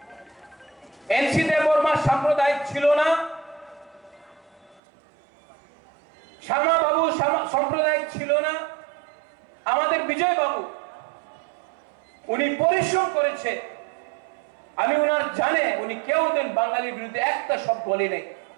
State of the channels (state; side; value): drops out; left; at 4.8 s